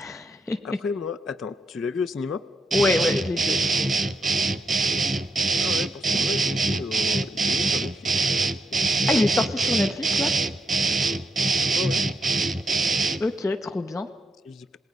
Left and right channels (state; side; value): normal; both; correlation 0.81